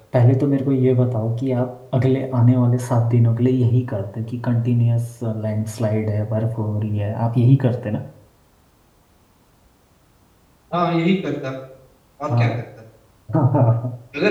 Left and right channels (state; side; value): identical; both; correlation 1.00